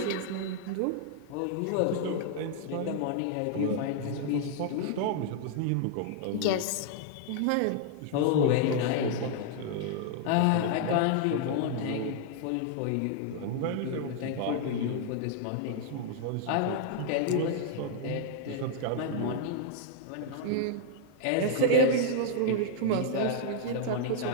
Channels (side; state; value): both; different; correlation -0.01